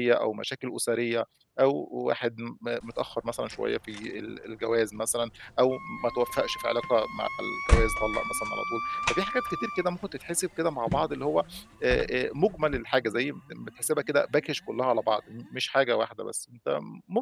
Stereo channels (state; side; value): identical; both; correlation 1.00